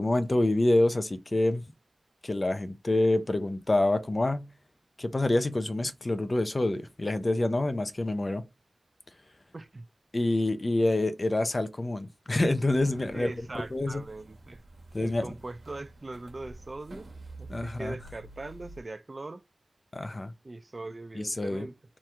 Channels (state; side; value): normal; both; correlation 0.98